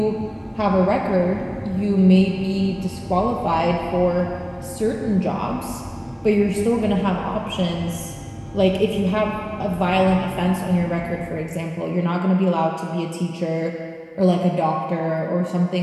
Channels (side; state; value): both; identical; correlation 1.00